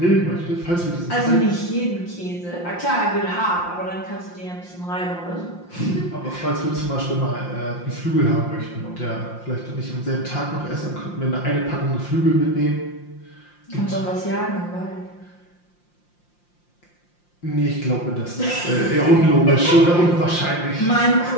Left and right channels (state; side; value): late; right; 5.7 ms